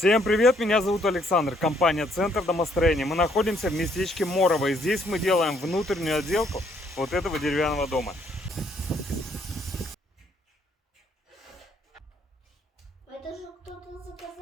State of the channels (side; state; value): both; normal; correlation 0.68